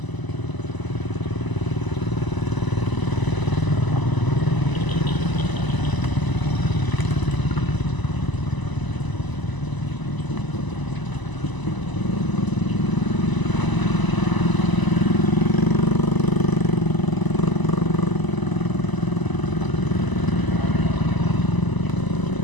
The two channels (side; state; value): right; late; 1.0 ms